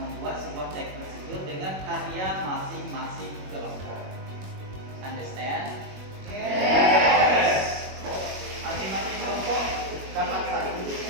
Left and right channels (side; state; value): left; late; 21 ms